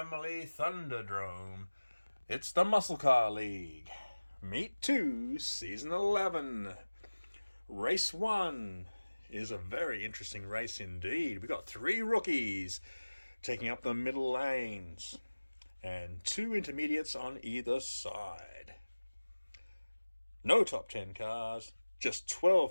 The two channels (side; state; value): both; inverted; correlation -1.00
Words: Thunderdome, it's the Muscle Car League. Meet 2, Season 11. Race 1 is a very interesting race indeed. We got 3 rookies taking up the middle lanes and 2 intermediates on either side. No top 10 cars, just